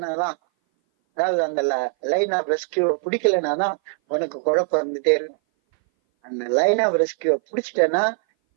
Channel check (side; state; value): left; silent; 59 dB below the other